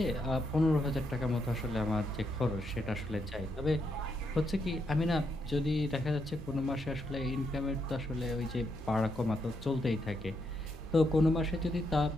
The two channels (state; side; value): normal; both; correlation 0.79